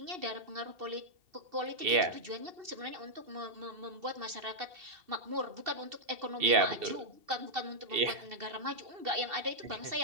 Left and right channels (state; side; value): late; left; 2.7 ms